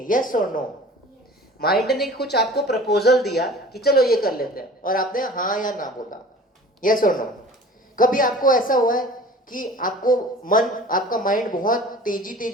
यस और नो? माइंड ने कुछ आपको प्रपोजल दिया कि चलो ये कर लेते हैं, और आपने हाँ या ना बोला. यस और नो? कभी आपको ऐसा हुआ है कि आपका माइंड बहुत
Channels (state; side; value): normal; both; correlation 0.43